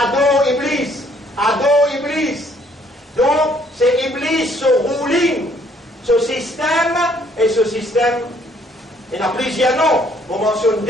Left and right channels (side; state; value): both; normal; correlation 0.64